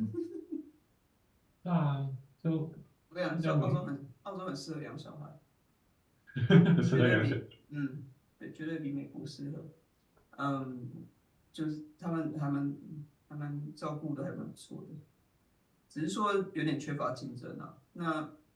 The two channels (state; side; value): identical; both; correlation 1.00